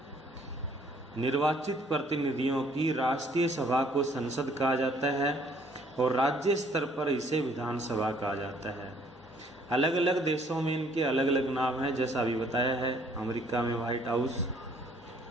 निर्वाचित प्रतिनिधियों की राष्ट्रीय सभा को संसद कहा जाता है और राज्य स्तर पर इसे विधानसभा कहा जाता है। अलग अलग देशों में इनके अलग अलग नाम हैं, जैसा अभी बताया है। अमेरिका में व्हाइट हाउस,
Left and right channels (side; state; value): both; normal; correlation 0.61